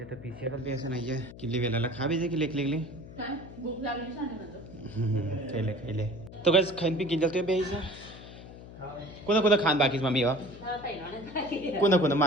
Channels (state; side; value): noise; left; hum, 16 dB below the sound